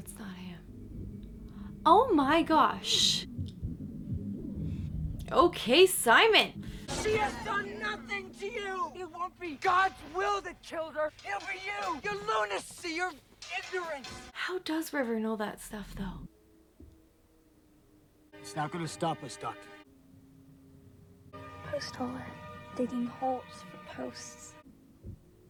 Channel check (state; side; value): identical; both; correlation 1.00